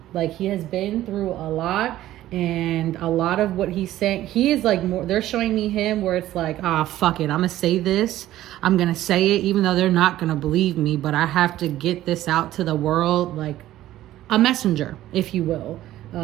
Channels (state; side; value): quieter; left; 14.1 dB